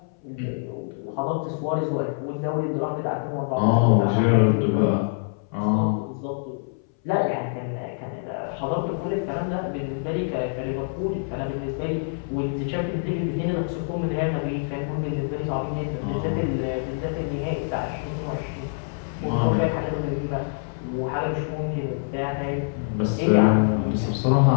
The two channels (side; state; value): right; silent; 60 dB below the other